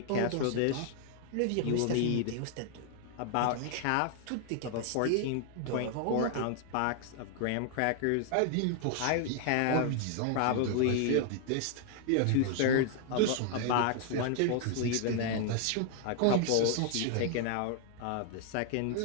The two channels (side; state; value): both; different; correlation 0.00